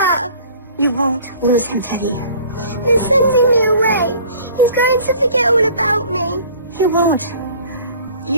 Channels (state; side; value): inverted; both; correlation -0.49